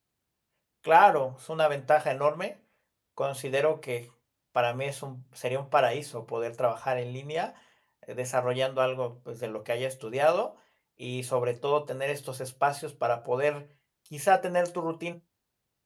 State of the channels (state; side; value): identical; both; correlation 1.00